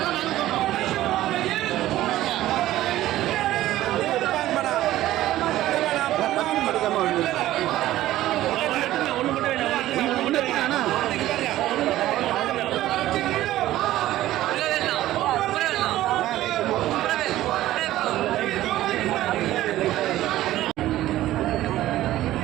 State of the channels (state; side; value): quieter; left; 14.8 dB